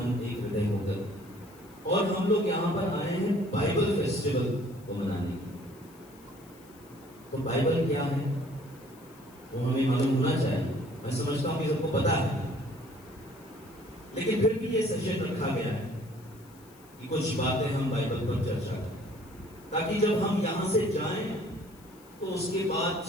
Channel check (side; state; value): left; noise; hiss, 26 dB below the sound